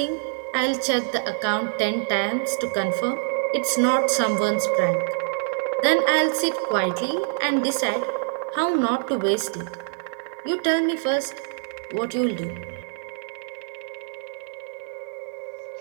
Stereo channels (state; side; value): silent; left; 59 dB below the other